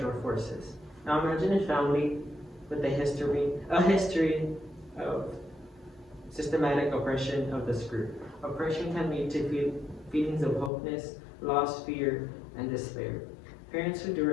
forces. Now imagine a family with a history of systematic oppression of this group. Oppression can lead to feelings of hopelessness, loss, fear, and despair. Parents who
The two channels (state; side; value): drops out; right; at 10.7 s